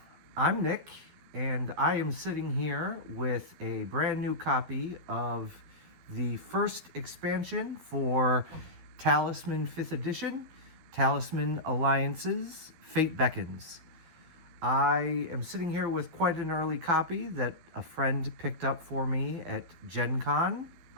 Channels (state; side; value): late; left; 12 ms